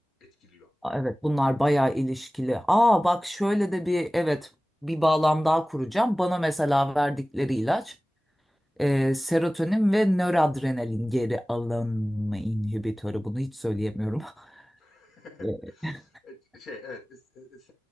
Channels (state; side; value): normal; both; correlation 0.98